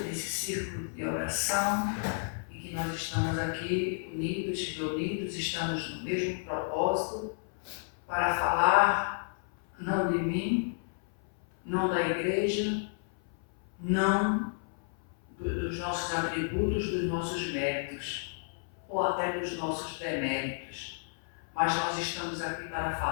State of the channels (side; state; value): right; silent; 57 dB below the other